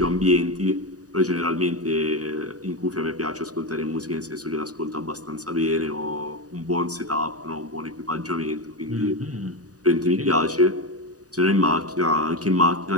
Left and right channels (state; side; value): late; left; 0.67 ms